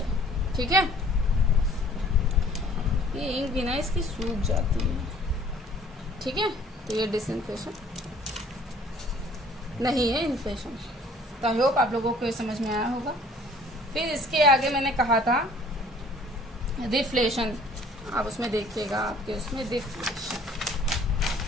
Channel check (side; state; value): both; normal; correlation 0.54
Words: ठीक है, ये इंक भी ना इसकी सूख जाती है। ठीक है, तो ये डिसइन्फ्लेशन नहीं है, इन्फ्लेशन। तो आई होप आप लोगों को ये समझ में आया होगा। फिर इसके आगे मैंने कहा था रिफ्लेशन, आप उसमें देखिएगा, आपके उसमें रिफ्लेशन,